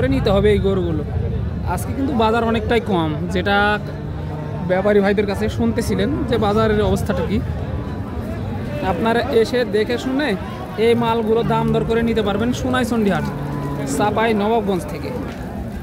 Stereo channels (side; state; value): both; identical; correlation 1.00